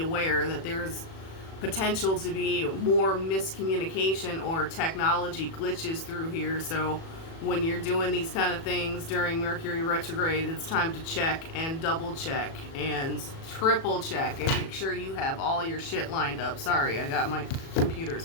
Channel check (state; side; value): late; right; 37 ms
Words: that there's potential to be more miscommunication or technology glitches through here. So when you're doing these kind of things during Mercury retrograde, it's time to check and double check and triple check and make sure you have all your shit lined up. Sorry, I got my